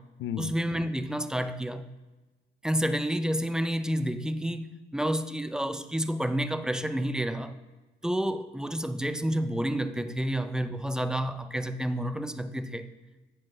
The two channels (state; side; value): normal; both; correlation 0.88